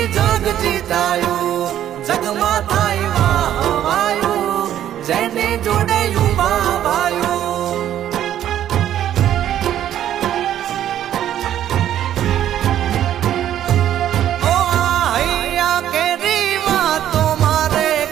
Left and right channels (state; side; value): quieter; left; 11.3 dB